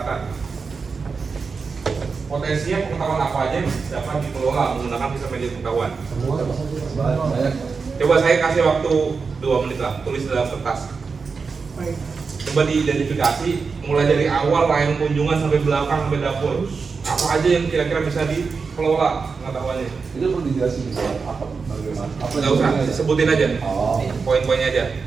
Potensinya pengetahuan apa aja yang dapat dikelola menggunakan sistem manajemen pengetahuan. Semua banyak. Coba saya kasih waktu 2 menit lah, tulis dalam kertas. Coba diidentifikasi mulai dari awal layanan kunjungan sampai belakang sampai dapur. Apa aja yang kira-kira bisa dikelola pengetahuannya? Itu perlu dijelasin gitu, apa bagaimana? Apa Nggak usah, yang- sebutin aja. Oh. Poin-poinnya aja.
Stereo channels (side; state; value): left; quieter; 5.0 dB